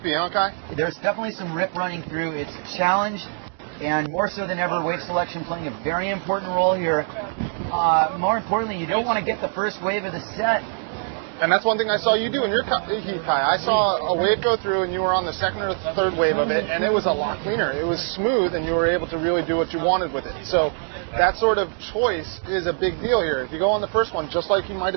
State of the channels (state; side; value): silent; left; 63 dB below the other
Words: huh, Kai? There's definitely some rip running through. It's a challenge, and more so than ever, wave selection playing a very important role here. More importantly, you don't want to get the first wave of the set. And that's one thing I saw you do in your heat, Kai. I saw a wave go through, and you were on the second or third wave of it, and it was a lot cleaner. It was smooth, and you were able to really do what you wanted with it. So that sort of choice is a big deal here. If you go on the first one, just like you might